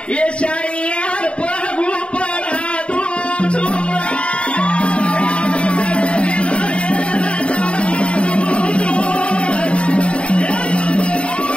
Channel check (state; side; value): late; right; 0.058 ms